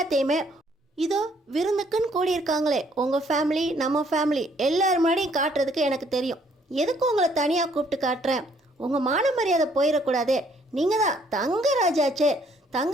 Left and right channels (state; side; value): normal; both; correlation 0.65